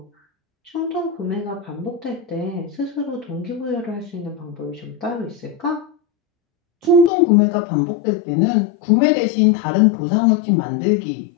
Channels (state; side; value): drops out; right; at 7.1 s